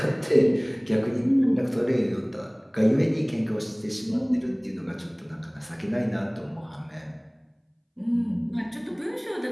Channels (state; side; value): identical; both; correlation 1.00